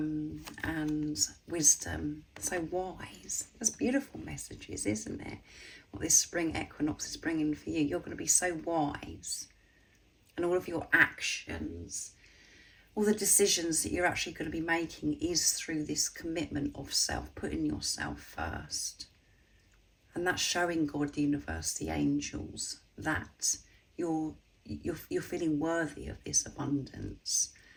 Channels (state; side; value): identical; both; correlation 1.00